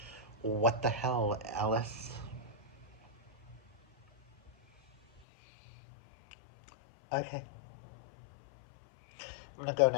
What the hell, Alice? Okay. I'm gonna go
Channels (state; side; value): drops out; right; at 5.2 s